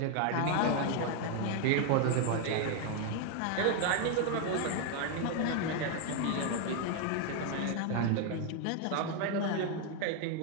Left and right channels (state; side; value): different; both; correlation 0.01